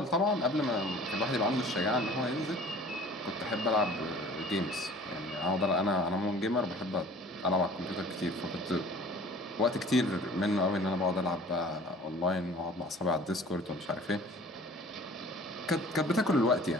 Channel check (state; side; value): normal; both; correlation 0.47